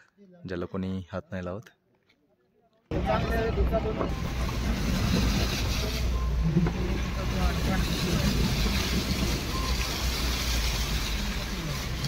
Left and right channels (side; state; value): both; identical; correlation 1.00